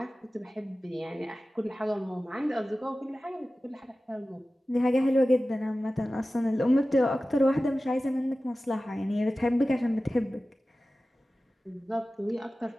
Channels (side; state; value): both; normal; correlation 0.95